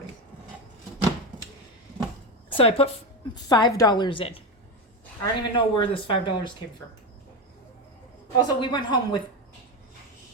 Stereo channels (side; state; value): both; normal; correlation 0.16